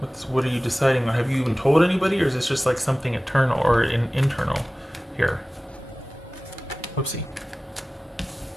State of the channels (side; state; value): both; normal; correlation 0.97